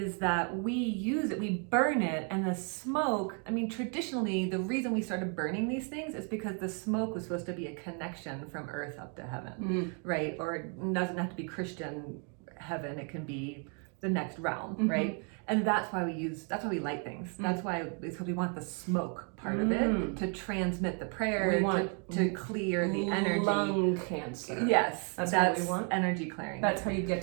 that we use it, we burn it, and the smoke, I mean, traditionally, the reason we started burning these things is because the smoke was supposed to be a connection from earth up to heaven, right? Or it doesn't have to be Christian heaven, it can be the next realm, right? And that's why we light things. That's why, because we want the smoke part of it to transmit the prayer, to clear the energy. Lung cancer. Yes, that's what we want. Energy clearing. That's how you get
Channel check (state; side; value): quieter; left; 39.2 dB